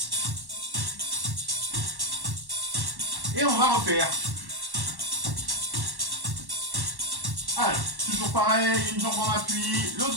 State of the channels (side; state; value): left; late; 1.1 ms